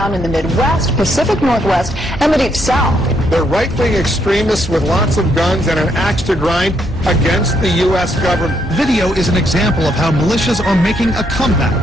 in the Midwest, Pacific Northwest, and the Deep South. They're right-wing extremists with lots of guns and an axe to grind against the U.S. government. Video is an example of how militias are making a comeback,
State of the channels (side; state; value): both; normal; correlation 0.74